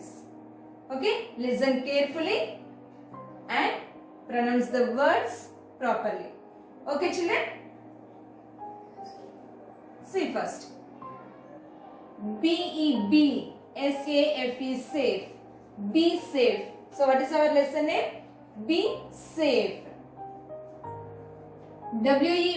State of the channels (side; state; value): both; identical; correlation 1.00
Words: Okay? Listen carefully and pronounce the words properly. Okay children? See first. B-E-B. S-A-F-E, safe. Be safe. So what is our lesson name? Be safe.